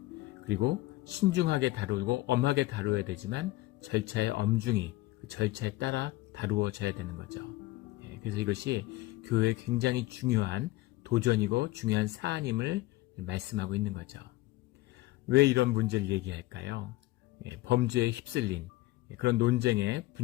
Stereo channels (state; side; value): quieter; right; 18.7 dB